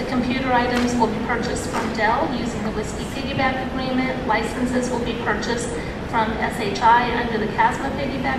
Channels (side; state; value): both; identical; correlation 1.00